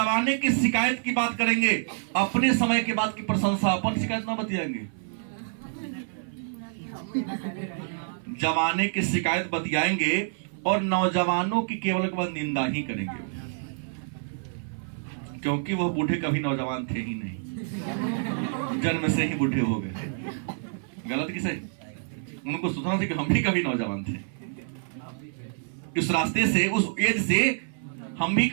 की शिकायत की बात करेंगे, अपने समय के बाद की प्रशंसा, अपन शिकायत ना बतियाएंगे। जवाने की शिकायत बतियाएंगे और नौजवानों की केवल निंदा ही करेंगे, क्योंकि वह बूढ़े कभी नौजवान थे ही नहीं, जन्म से ही बूढ़े हो गए। गलत की सही? उनको सोचना था कि हम भी कभी नौजवान थे। इस रास्ते से, उस एज से हम भी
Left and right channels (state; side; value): silent; left; 56 dB below the other